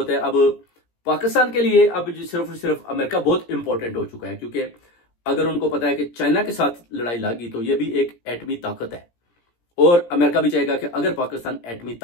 है। अब पाकिस्तान के लिए अब सिर्फ और सिर्फ अमेरिका बहुत इंपॉर्टेंट हो चुका है, क्योंकि अगर उनको पता है कि चाइना के साथ लड़ाई लगी तो ये भी एक एटमी ताकत है, और अमेरिका भी चाहेगा कि अगर पाकिस्तान एटमी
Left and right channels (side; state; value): right; late; 17 ms